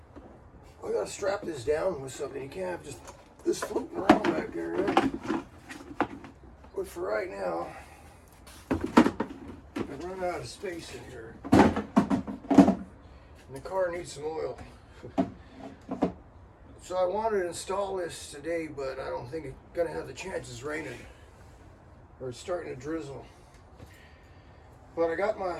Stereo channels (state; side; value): identical; both; correlation 1.00